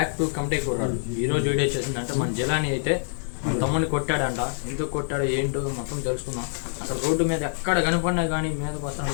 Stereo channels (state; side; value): silent; right; digital silence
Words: to committee కుర్రాడు. ఈరోజు వీడియో వచ్చేసిందంటే మన జిలాని అయితే మన తమ్ముడిని కొట్టాడంట. ఎందుకు కొట్టాడో ఏంటో మొత్తం తెలుసుకుందాం. అసలు రోడ్డు మీద ఎక్కడ కనపడినా కానీ మీదకి